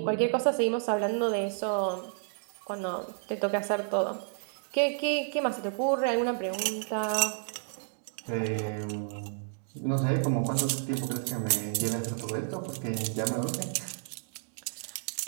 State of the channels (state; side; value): silent; left; digital silence